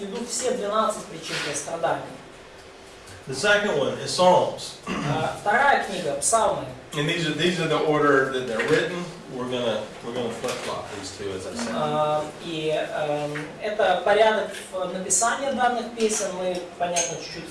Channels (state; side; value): identical; both; correlation 1.00